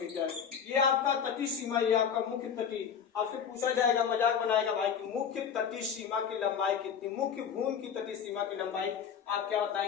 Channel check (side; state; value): right; quieter; 7.5 dB